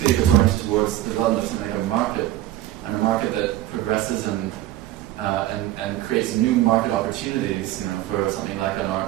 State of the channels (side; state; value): left; quieter; 14.4 dB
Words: if it's oriented towards the development of something like a market, and a market that progresses and creates new market opportunities, for something like an